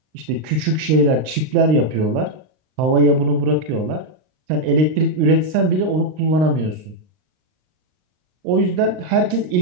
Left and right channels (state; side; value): late; left; 39 ms